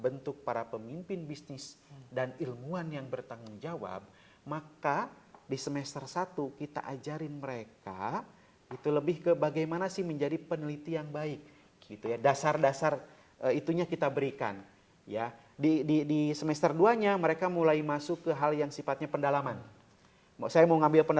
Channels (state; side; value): identical; both; correlation 1.00